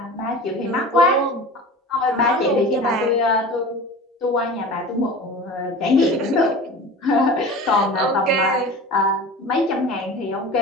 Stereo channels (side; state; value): both; normal; correlation 0.36